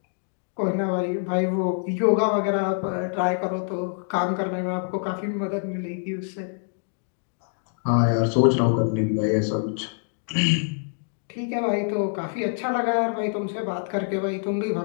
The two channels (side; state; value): right; silent; 57 dB below the other